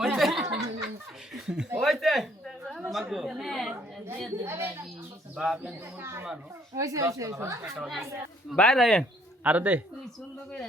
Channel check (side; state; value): both; normal; correlation 0.64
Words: ওইতে মাগো বাপ মুরবি মানুষ বাই রায়ন আর দে